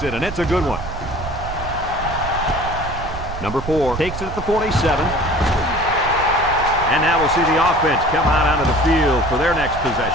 it, and it's a good one. Number 4 takes it at the 47. And now we'll see the offense come out onto the field for their next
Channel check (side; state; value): right; noise; rumble, 9 dB below the sound